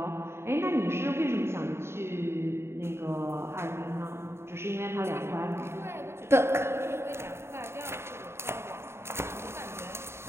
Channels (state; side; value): late; left; 0.12 ms